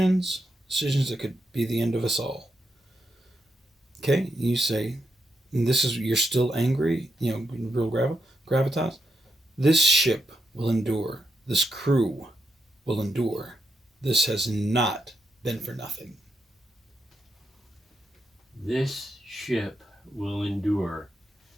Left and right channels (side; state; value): both; normal; correlation 0.82